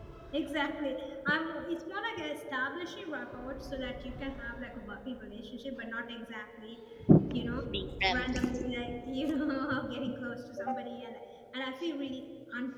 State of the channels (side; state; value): both; identical; correlation 1.00